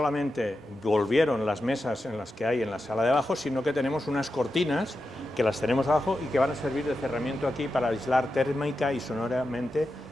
volvieron las mesas en las que hay en la sala de abajo, sino que tenemos unas cortinas que las tenemos abajo y que van a servir de cerramiento aquí para aislar térmica y sonoramente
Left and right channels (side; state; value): both; normal; correlation 0.90